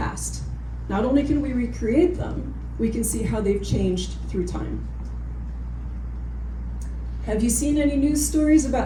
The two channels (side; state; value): both; identical; correlation 1.00